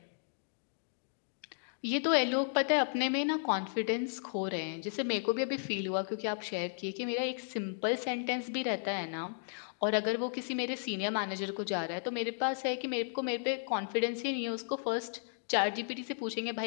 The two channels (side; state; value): right; silent; digital silence